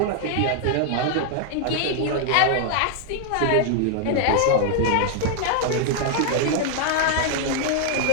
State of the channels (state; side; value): different; both; correlation 0.00